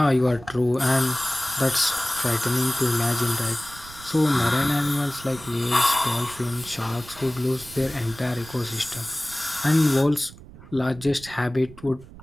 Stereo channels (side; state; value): right; noise; rumble, 18 dB below the sound